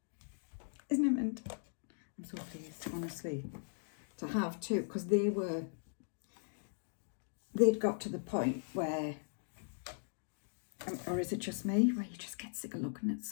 Isn't it mint? I'm so pleased, honestly, to have two, because they'd got to the point where, or is it just me, where you just get sick of looking at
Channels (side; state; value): right; silent; digital silence